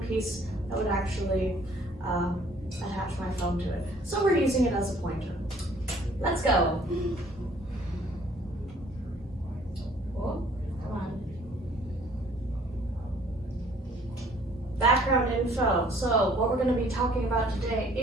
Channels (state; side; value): normal; both; correlation 0.58